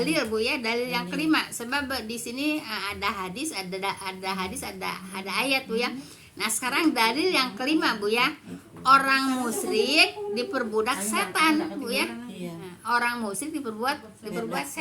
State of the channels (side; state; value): both; identical; correlation 1.00